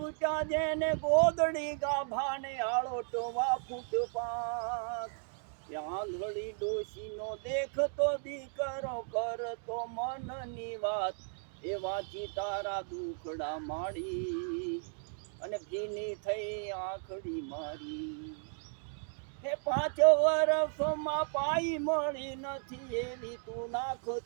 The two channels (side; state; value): left; silent; 55 dB below the other